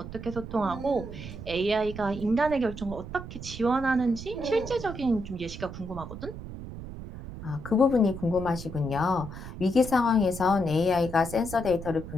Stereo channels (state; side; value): noise; right; rumble, 10 dB below the sound